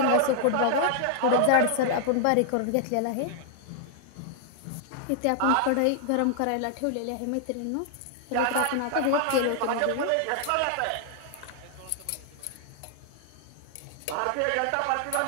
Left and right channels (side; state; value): both; different; correlation 0.00